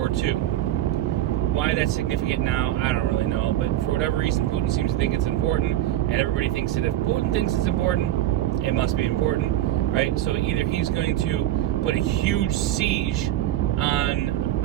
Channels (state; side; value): quieter; left; 13.4 dB